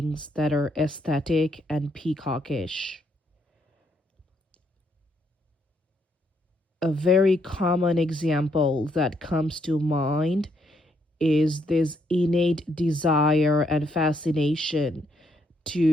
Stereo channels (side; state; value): both; normal; correlation 0.73